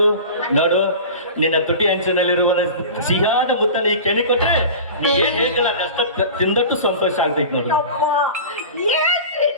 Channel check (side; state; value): both; inverted; correlation -0.34